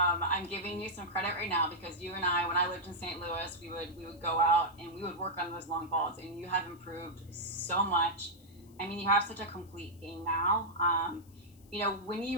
giving you some credit right now because you and I, when I lived in St. Louis, we would go out and we would work on those long balls, and you have improved so much. I mean, you have such a complete game now. When you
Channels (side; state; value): left; noise; hiss, 28 dB below the sound